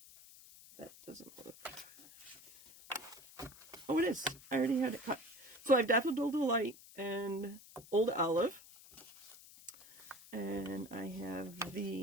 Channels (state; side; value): noise; left; hiss, 20 dB below the sound